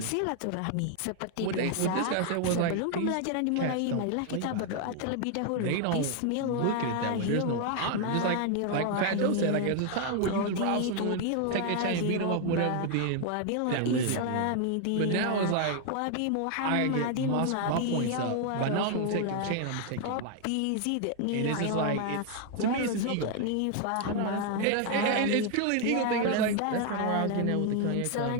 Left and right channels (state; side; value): different; both; correlation 0.00